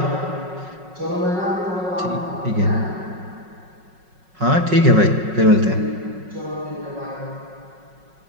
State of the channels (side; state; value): left; late; 5.4 ms